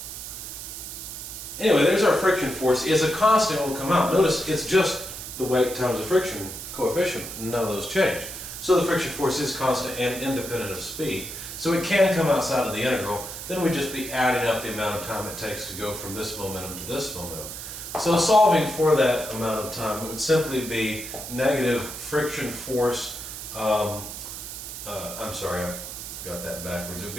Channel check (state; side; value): noise; right; hiss, 9 dB below the sound